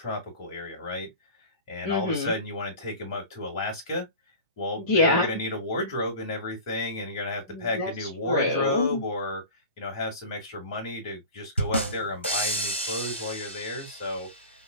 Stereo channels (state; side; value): inverted; both; correlation -0.36